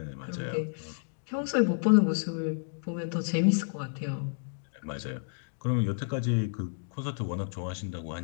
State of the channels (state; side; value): silent; right; digital silence